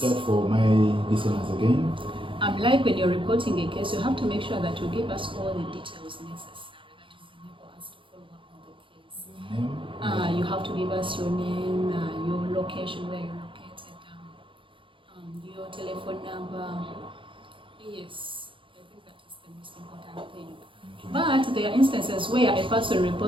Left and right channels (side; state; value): left; late; 0.25 ms